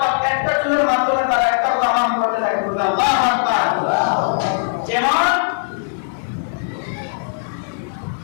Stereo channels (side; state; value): right; silent; 60 dB below the other